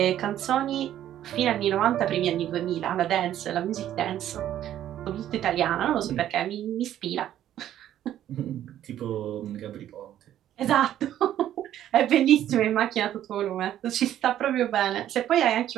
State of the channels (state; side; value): quieter; left; 11.7 dB